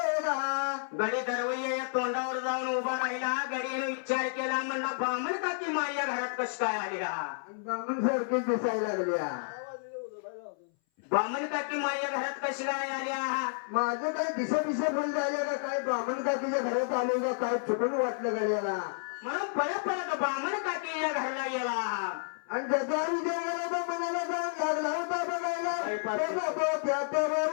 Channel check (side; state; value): right; silent; 57 dB below the other